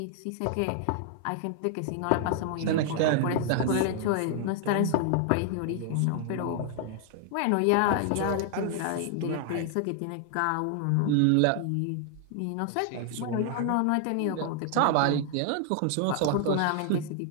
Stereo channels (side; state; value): both; different; correlation 0.00